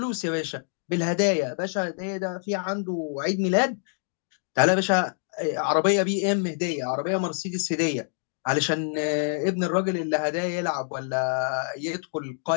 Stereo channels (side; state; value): right; silent; digital silence